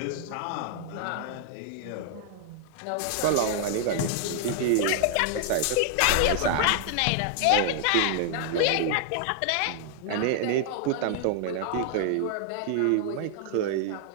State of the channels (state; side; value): different; both; correlation -0.01